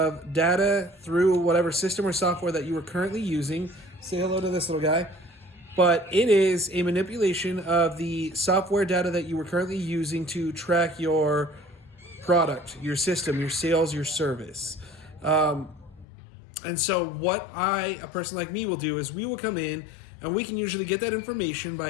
data through whatever system or software that you are currently using. Say hello to this little guy. But it is a manipulation of the software data that you were currently using to track your product, your system, your sales, your service. And so, what a person like me, will do is we will come in and we can usually get that information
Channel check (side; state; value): right; drops out; at 16.1 s